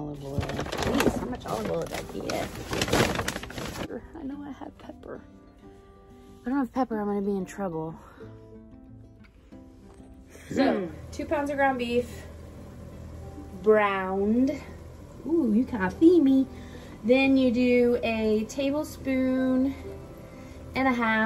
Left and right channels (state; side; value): identical; both; correlation 1.00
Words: oil. Jeez, how much olive oil did I get? I know I have pepper. If I don't have pepper, I'm gonna be in trouble. So, 2 pounds of ground beef, browned. Ooh, you can't feed me. Then you do a tablespoon and a